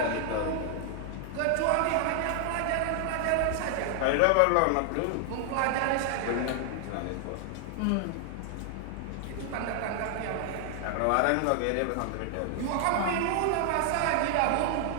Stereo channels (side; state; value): both; different; correlation 0.00